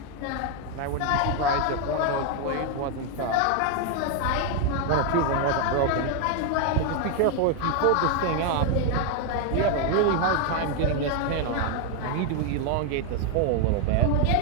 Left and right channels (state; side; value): different; both; correlation 0.01